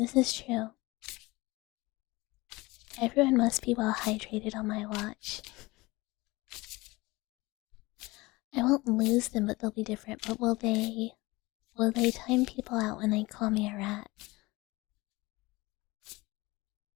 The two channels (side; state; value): right; quieter; 22.0 dB